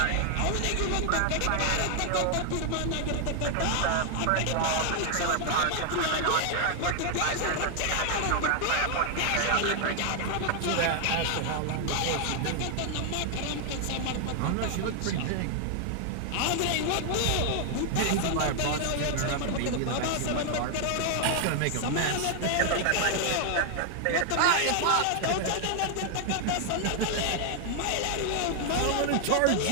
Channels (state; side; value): different; both; correlation 0.00